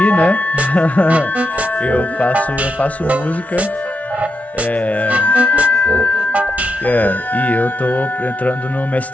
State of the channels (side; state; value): both; normal; correlation 0.85